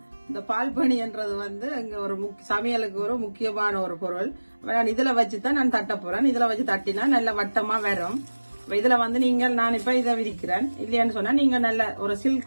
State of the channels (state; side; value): inverted; both; correlation -1.00